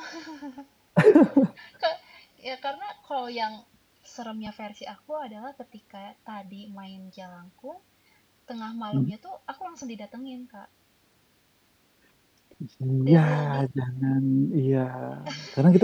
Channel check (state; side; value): identical; both; correlation 1.00